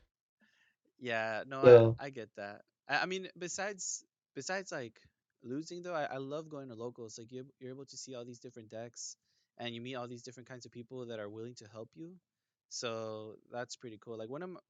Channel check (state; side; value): identical; both; correlation 1.00